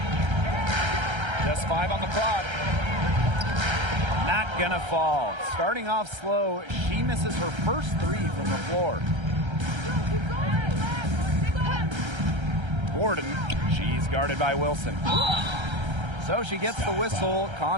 Just 5 on the clock. Not gonna fall. Starting off slow, she misses her first 3 from the floor. Gordon, she's guarded by Wilson. So she gets the whistle.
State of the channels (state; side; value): late; left; 1.3 ms